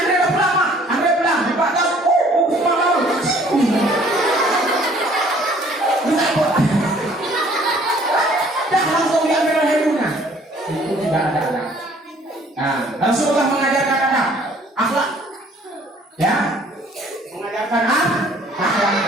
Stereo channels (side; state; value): both; normal; correlation 0.57